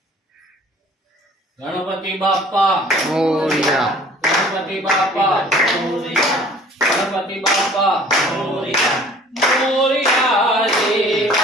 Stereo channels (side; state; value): both; normal; correlation 0.51